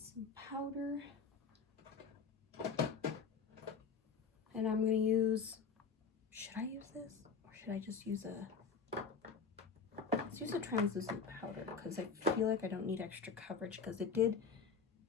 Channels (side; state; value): right; quieter; 5.5 dB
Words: powder. And I'm gonna use, should I use this? Or should I just use let's use a translucent powder because I feel like I don't need extra coverage because it did